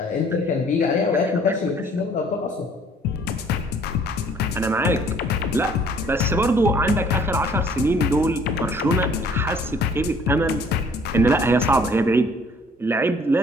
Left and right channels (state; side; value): normal; both; correlation 0.57